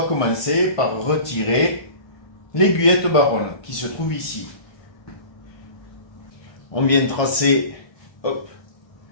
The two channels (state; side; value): late; right; 1.3 ms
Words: commencer par retirer l'aiguillette baronne qui se trouve ici. On vient tracer, hop,